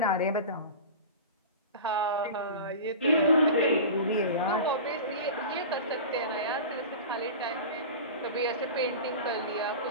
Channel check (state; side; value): inverted; both; correlation -0.31